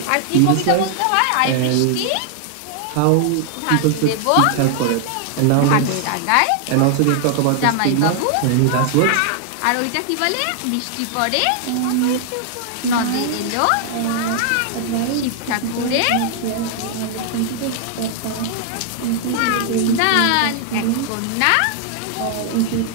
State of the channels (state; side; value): different; both; correlation 0.00